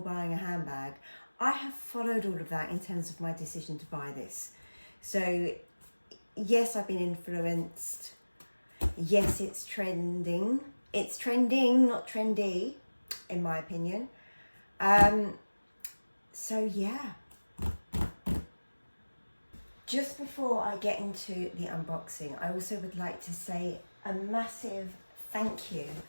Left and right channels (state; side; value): inverted; both; correlation -1.00